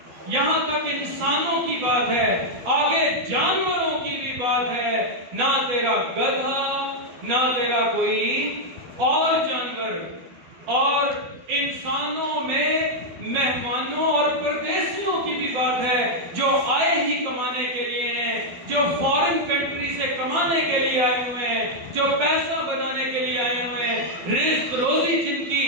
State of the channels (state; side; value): late; left; 12 ms